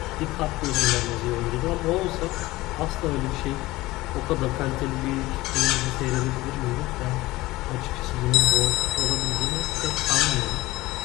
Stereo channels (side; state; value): right; quieter; 19.0 dB